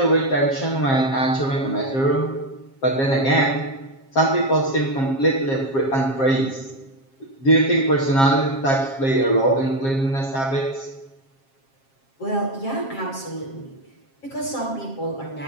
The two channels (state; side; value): late; right; 7.4 ms